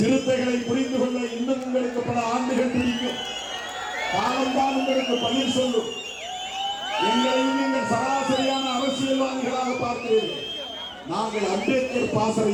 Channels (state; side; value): identical; both; correlation 1.00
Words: புரிந்து கொள்ள இன்னும் உங்களுக்கு பல ஆண்டுகள் பிடிக்கும். காலம்தான் உங்களுக்கு பதில் சொல்லும். எங்களையும் நீங்கள் சராசரியான அரசியல்வாதிகளாக பார்க்கிறீர்கள். நாங்கள் அம்பேத்கர்